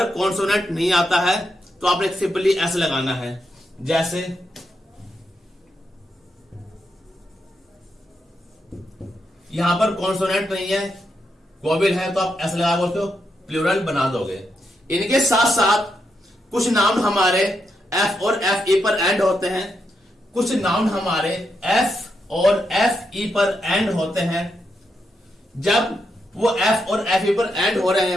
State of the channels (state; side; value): normal; both; correlation 0.83